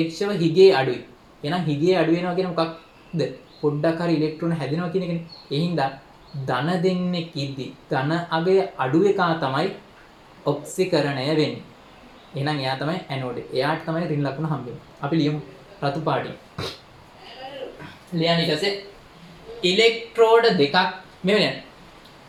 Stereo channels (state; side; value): identical; both; correlation 1.00